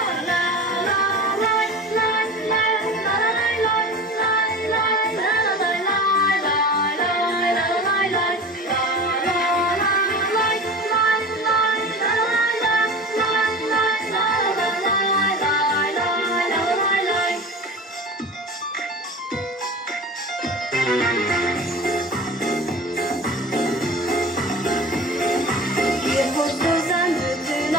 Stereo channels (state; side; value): normal; both; correlation 0.35